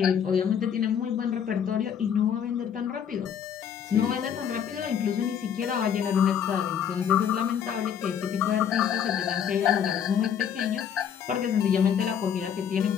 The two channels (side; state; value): right; quieter; 8.3 dB